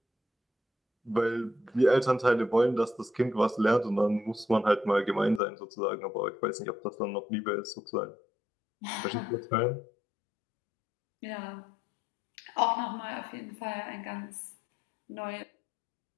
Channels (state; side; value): drops out; right; at 5.4 s